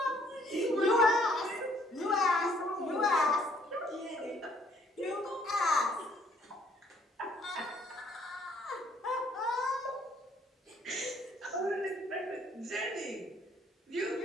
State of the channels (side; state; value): both; normal; correlation 0.63